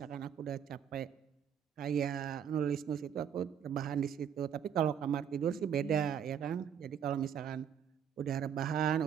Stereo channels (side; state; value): left; quieter; 8.5 dB